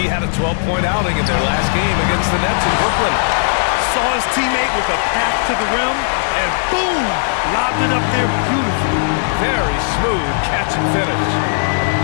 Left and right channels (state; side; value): silent; right; digital silence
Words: had a 12-point outing in their last game against the Nets in Brooklyn. Saw his teammate with a path to the rim, and boom! Lobbed it up there beautifully. Very smooth catch and finish.